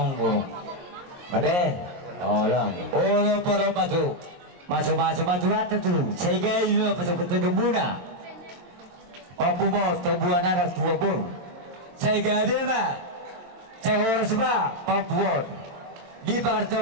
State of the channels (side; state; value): left; late; 22 ms